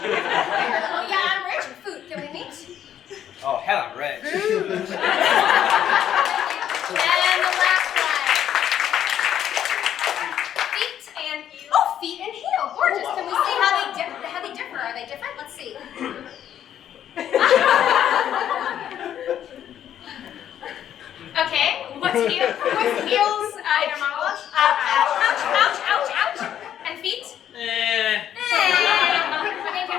Oh yeah, I'm rich. Food. Can we meet? Oh, hell, I'm rich. And the last one. Feet and heel. Gorgeous. Can we see how they differ? Are they different? Let's see. Okay. What's heels? Inner monologue. Ouch. And feet? Okay, can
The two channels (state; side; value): quieter; right; 10.3 dB